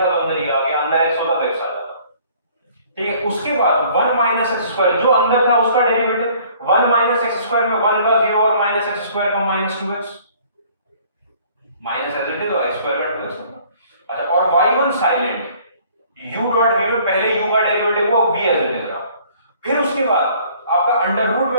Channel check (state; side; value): inverted; both; correlation -0.56